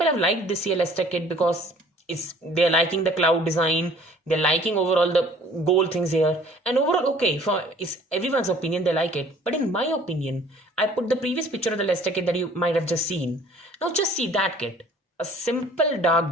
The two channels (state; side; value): normal; both; correlation 0.53